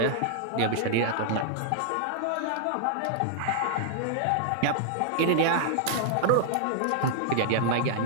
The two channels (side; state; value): both; different; correlation -0.01